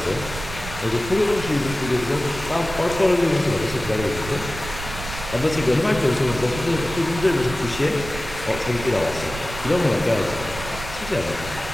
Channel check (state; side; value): noise; right; rumble, 11 dB below the sound